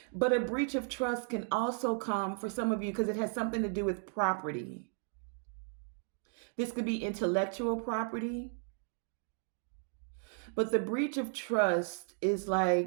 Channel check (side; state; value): left; silent; 55 dB below the other